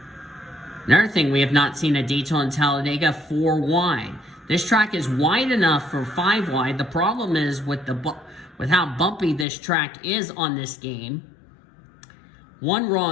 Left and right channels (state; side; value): drops out; right; at 9.5 s